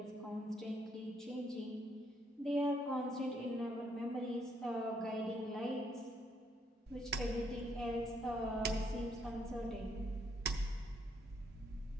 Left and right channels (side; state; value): both; normal; correlation 0.73